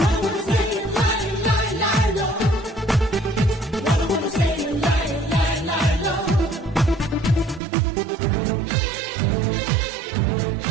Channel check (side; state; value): left; drops out; at 7.6 s